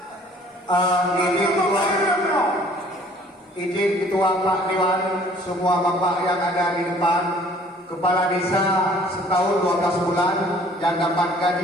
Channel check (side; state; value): both; normal; correlation 0.55